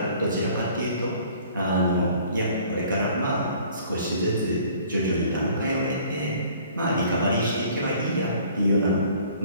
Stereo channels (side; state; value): both; inverted; correlation -0.54